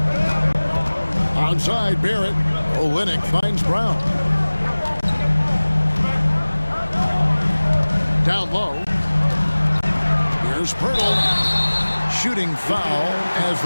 Outside Barrett. Olynyk finds Brown. Down low. Here's Pirtle. Shooting foul as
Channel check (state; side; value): inverted; both; correlation -1.00